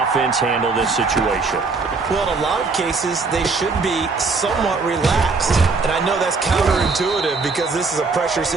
offense handle this situation? Well, in a lot of cases, they should be somewhat relaxed. And I know that's counterintuitive because this is a pressure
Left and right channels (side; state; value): left; quieter; 4.2 dB